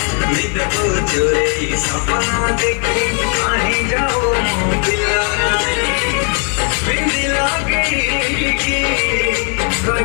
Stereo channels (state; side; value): quieter; right; 39.6 dB